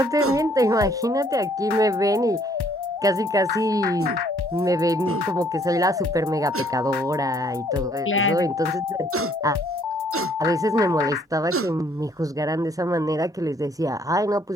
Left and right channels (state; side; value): normal; both; correlation 0.63